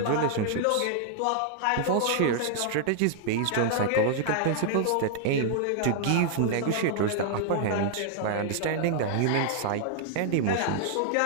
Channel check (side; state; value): both; different; correlation -0.01